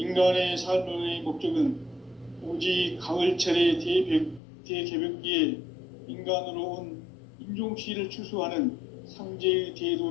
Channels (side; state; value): right; drops out; at 4.4 s